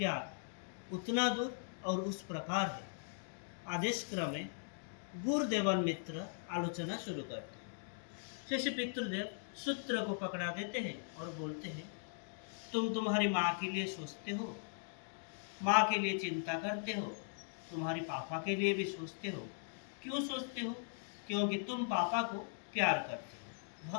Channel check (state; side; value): silent; right; digital silence